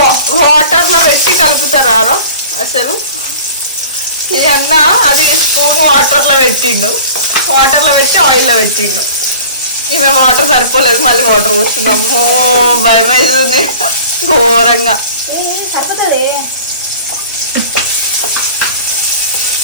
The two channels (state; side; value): inverted; both; correlation -0.42